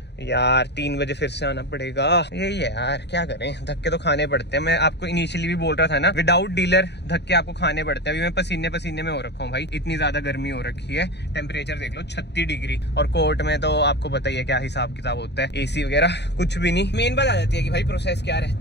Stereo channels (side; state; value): right; late; 0.50 ms